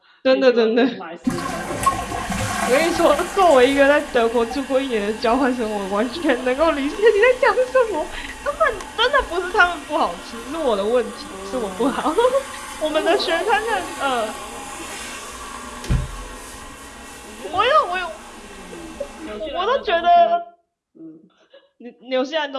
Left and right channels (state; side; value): identical; both; correlation 1.00